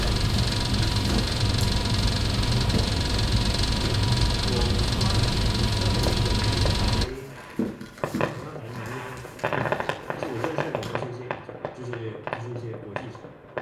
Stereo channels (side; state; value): both; identical; correlation 1.00